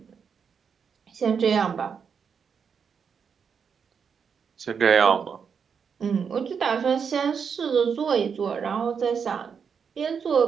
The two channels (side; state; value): left; quieter; 6.5 dB